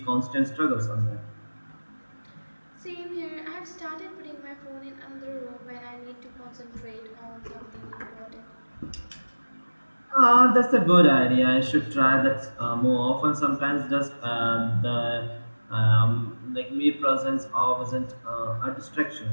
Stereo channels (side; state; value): both; inverted; correlation -1.00